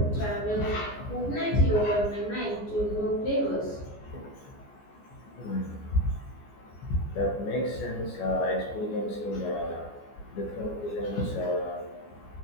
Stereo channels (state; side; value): late; right; 14 ms